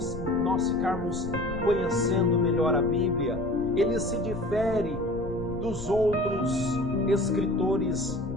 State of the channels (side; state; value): left; noise; rumble, 12 dB below the sound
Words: nós ficarmos conhecendo melhor a Bíblia. Ele se difere dos outros escritores